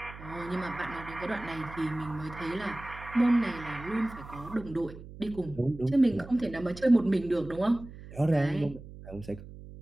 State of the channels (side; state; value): right; noise; hum, 15 dB below the sound